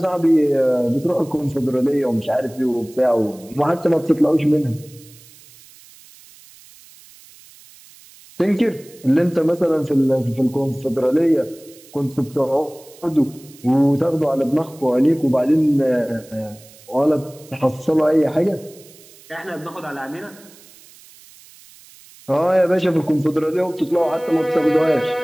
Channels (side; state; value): right; noise; hiss, 24 dB below the sound